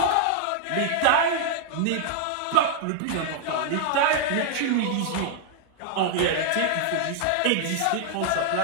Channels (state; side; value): different; both; correlation -0.01